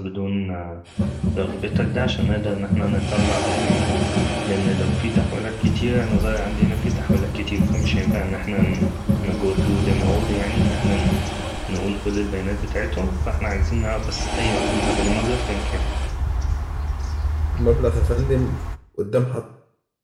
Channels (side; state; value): both; identical; correlation 1.00